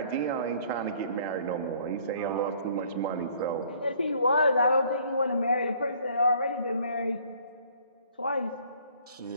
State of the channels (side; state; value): both; inverted; correlation -0.58